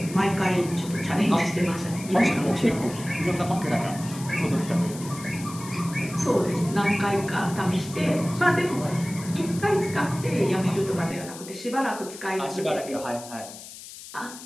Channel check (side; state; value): left; noise; hiss, 14 dB below the sound